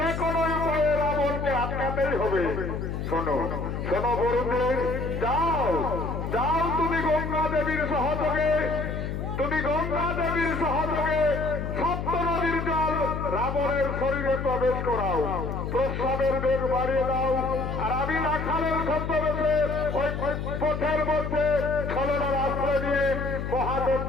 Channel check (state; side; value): noise; left; hum, 4 dB below the sound